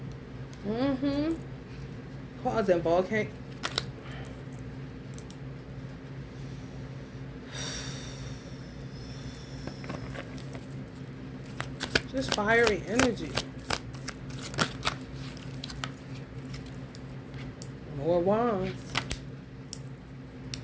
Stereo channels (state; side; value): identical; both; correlation 1.00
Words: Causing volcano. Just fiery energy. More wands.